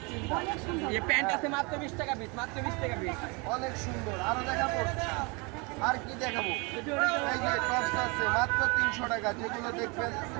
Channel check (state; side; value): quieter; left; 29.6 dB